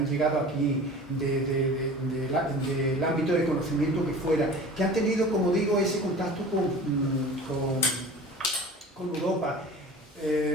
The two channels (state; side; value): normal; both; correlation 0.40